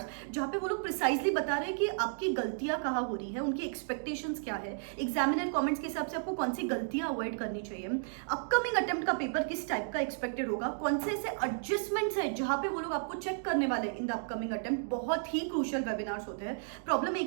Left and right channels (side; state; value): left; silent; digital silence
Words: जहां पे वो लोग प्रिसाइजली बता रहे हैं कि आपकी गलतियां कहाँ हो रही है, उनकी एक्सपेक्टेशंस क्या है, एग्जामिनर कमेंट्स के हिसाब से आपको कौन सी गलतियां अवॉइड करनी चाहिए, अपकमिंग अटेम्प्ट का पेपर किस टाइप का एक्सपेक्टेड होगा, कौन से ऐसे एडजस्टमेंट्स है जहां पे वो लोग आपको चेक करने वाले इन द अपकमिंग अटेम्प्ट। बहुत ही क्रूशियल वेबिनार्स होते हैं। प्रॉब्लम